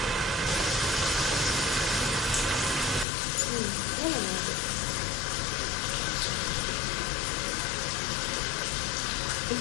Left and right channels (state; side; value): drops out; right; at 3.1 s